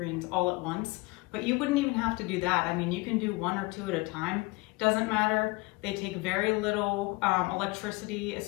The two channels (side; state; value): right; quieter; 24.9 dB